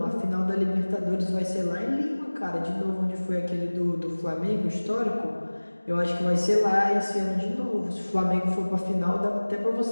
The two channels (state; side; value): inverted; both; correlation -1.00